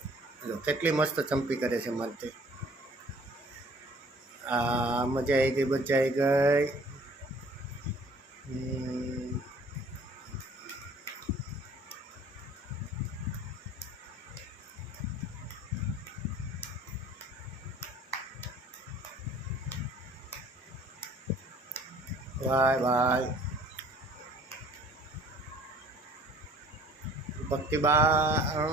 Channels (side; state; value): both; normal; correlation 0.53